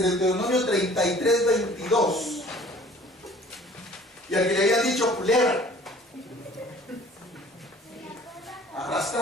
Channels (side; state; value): both; normal; correlation 0.50